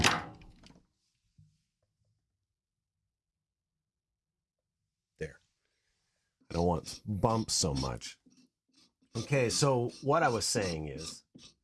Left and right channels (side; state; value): both; identical; correlation 1.00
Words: There. I don't want bumps so much. Okay, so what I was saying is,